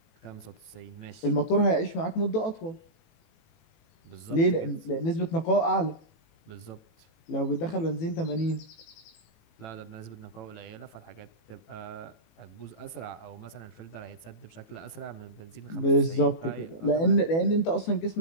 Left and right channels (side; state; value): right; late; 18 ms